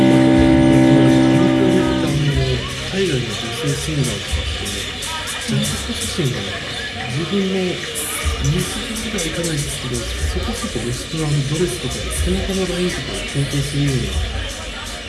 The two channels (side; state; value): both; identical; correlation 1.00